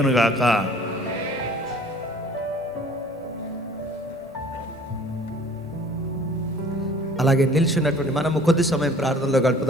అలాగే నిల్చున్నటువంటి మనము కొద్ది సమయం ప్రార్థనలో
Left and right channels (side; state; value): both; normal; correlation 0.51